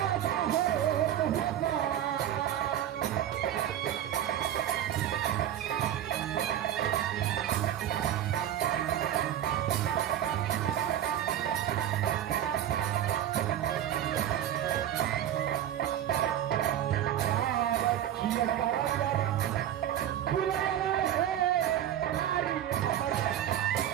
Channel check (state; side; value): quieter; left; 11.1 dB